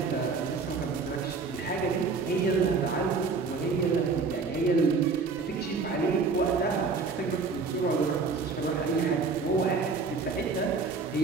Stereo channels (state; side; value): quieter; left; 4.6 dB